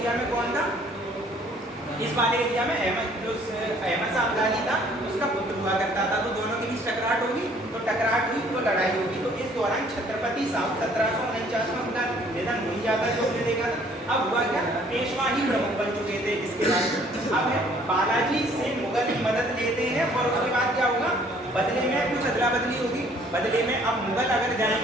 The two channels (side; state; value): both; normal; correlation 0.59